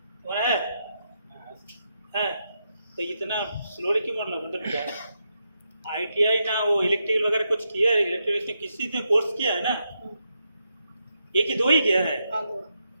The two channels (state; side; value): inverted; both; correlation -0.83